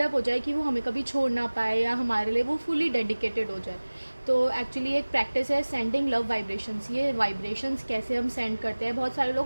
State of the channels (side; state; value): both; inverted; correlation -1.00